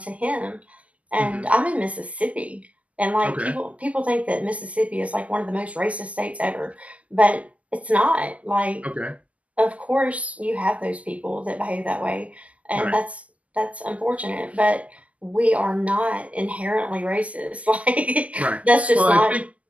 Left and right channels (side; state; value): left; late; 0.070 ms